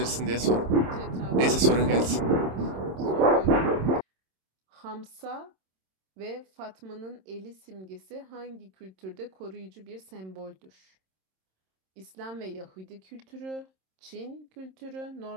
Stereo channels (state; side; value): late; left; 27 ms